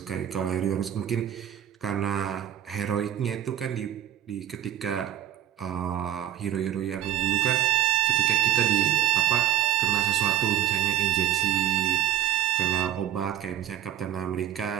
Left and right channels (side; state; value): left; quieter; 12.0 dB